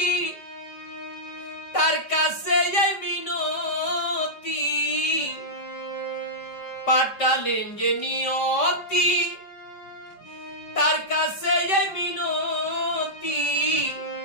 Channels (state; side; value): late; right; 5.1 ms